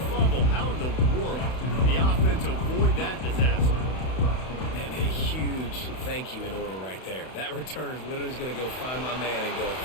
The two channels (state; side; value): late; right; 32 ms